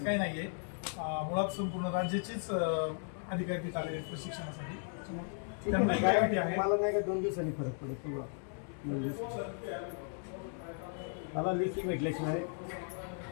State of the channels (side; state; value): right; silent; 54 dB below the other